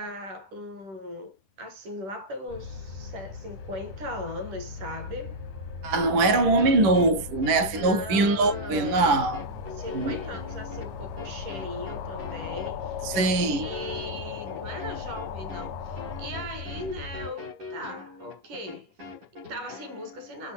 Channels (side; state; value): left; late; 10 ms